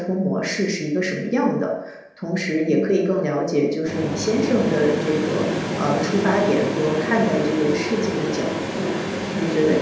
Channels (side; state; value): both; identical; correlation 1.00